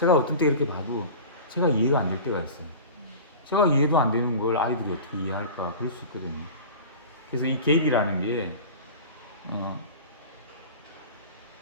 어떤 때 이렇게 봐도 제가 이해가 안 될 때가 있어요. 제가 이해도 안 되는 걸 아이들이 어떻게 이해할까? 그럴 수 있거든요. 그래서 이 개입이라는 게,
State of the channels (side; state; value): both; inverted; correlation -0.35